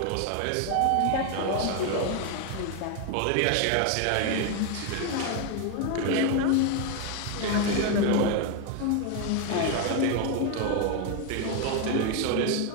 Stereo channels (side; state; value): both; different; correlation 0.01